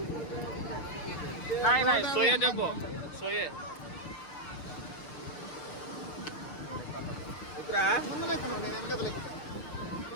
नहीं नहीं सोये देखो सोये.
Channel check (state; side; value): late; right; 6.5 ms